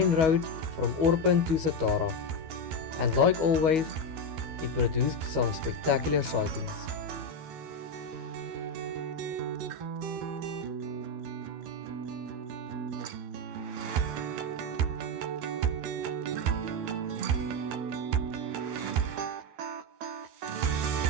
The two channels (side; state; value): left; late; 12 ms